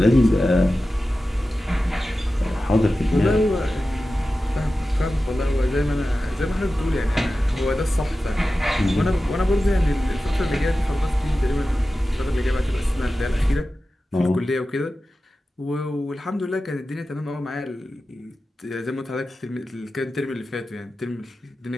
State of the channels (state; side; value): normal; both; correlation 0.94